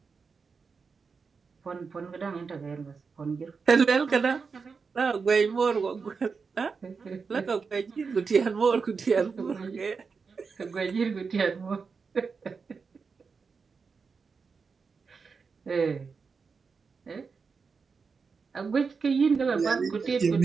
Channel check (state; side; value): quieter; left; 5.1 dB